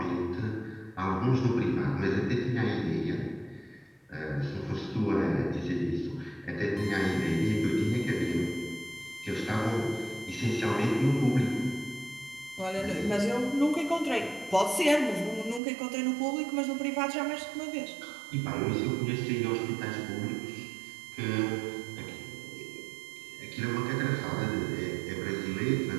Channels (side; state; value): left; drops out; at 15.6 s